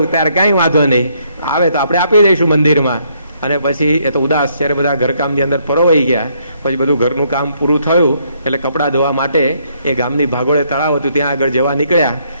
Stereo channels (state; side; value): inverted; both; correlation -0.71